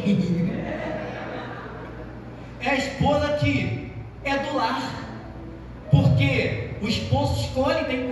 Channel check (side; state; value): both; identical; correlation 1.00